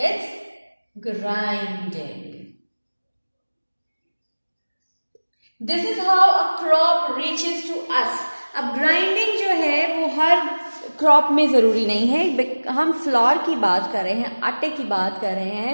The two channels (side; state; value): both; inverted; correlation -1.00